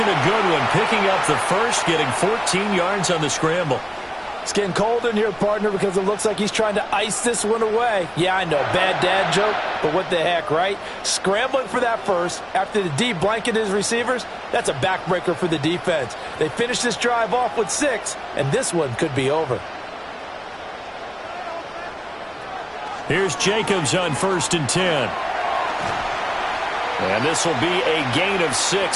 a good one. Picking up the first, getting 14 yards on the scramble. It's getting cold in here, partner, because it looks like he's trying to ice this one away. Yeah, I know, bad dad joke, but what the heck, right? Scrambling for that first after the D blanketed his receivers, that's a backbreaker for the defense. They finished this drive off with 6, and this one could be over. Here's Jacobs on 1st and 10. And this will be a gain of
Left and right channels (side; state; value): both; identical; correlation 1.00